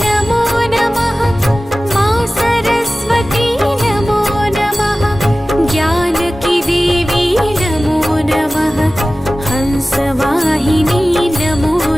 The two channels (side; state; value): both; normal; correlation 0.96